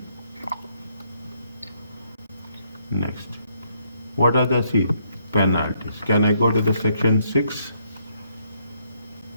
Next, what are the penalties? Can I go to the section 6?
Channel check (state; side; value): inverted; both; correlation -0.72